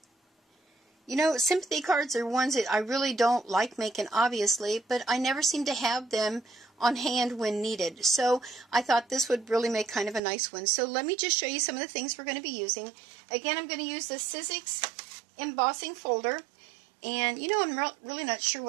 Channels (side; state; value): left; drops out; at 10.2 s